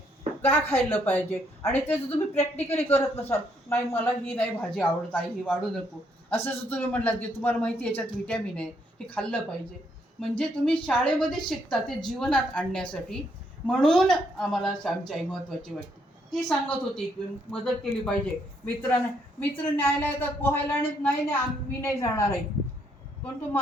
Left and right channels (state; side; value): normal; both; correlation 0.72